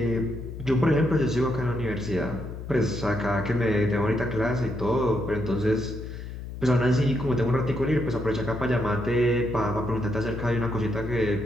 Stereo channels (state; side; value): noise; left; hum, 9 dB below the sound